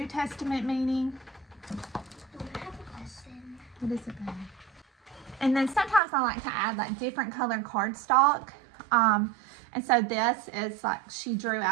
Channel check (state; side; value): drops out; left; at 6.0 s